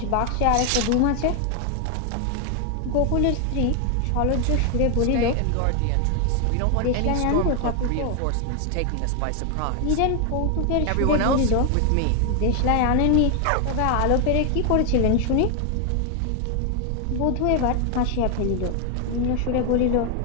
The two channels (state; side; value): different; both; correlation 0.00